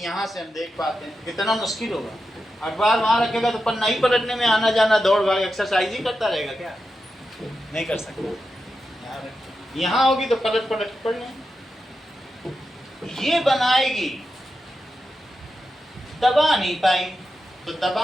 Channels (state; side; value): normal; both; correlation 0.89